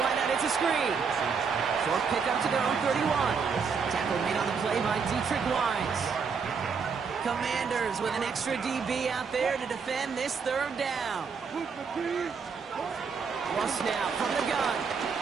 it's a screen. Short pickup to their own 31. Tackle made on the play by Dietrich Wise. Commanders with an extra DB out there to defend this third down. Russ now from the gun.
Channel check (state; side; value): quieter; left; 5.7 dB